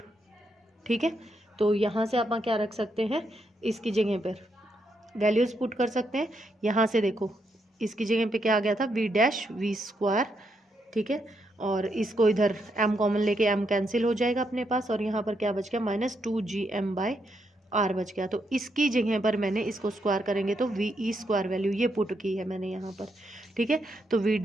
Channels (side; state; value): both; normal; correlation 0.79